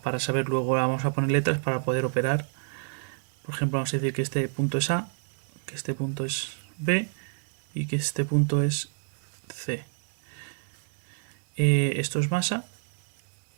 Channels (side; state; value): left; silent; digital silence